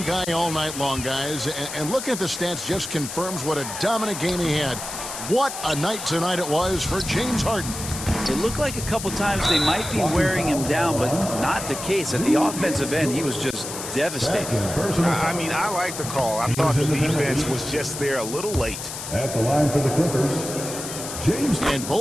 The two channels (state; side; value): noise; left; hiss, 8 dB below the sound